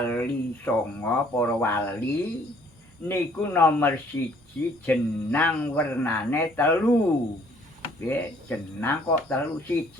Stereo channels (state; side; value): normal; both; correlation 0.61